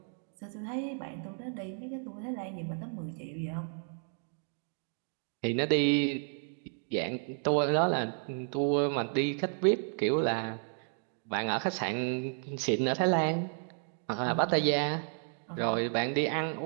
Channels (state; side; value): silent; left; 56 dB below the other